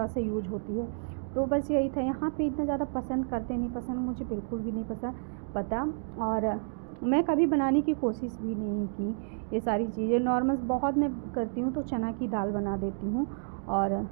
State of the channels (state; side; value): silent; left; digital silence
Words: सा यूज होती है। तो बस यही था, यहाँ पे इतना ज़्यादा पसंद करते नहीं, पसंद मुझे बिल्कुल भी नहीं पता। और मैं कभी बनाने की कोशिश भी नहीं की ये सारी चीज़ें। नॉर्मल बहुत मैं करती हूँ तो चना की दाल बना देती हूँ, और